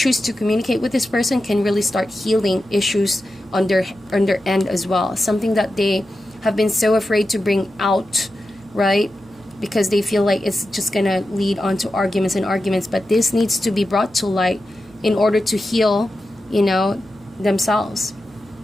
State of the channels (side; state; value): right; noise; hum, 26 dB below the sound